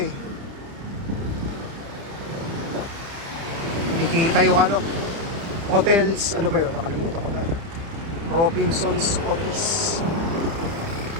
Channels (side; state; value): left; late; 30 ms